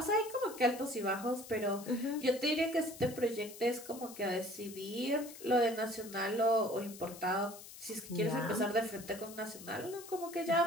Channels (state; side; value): noise; left; hiss, 15 dB below the sound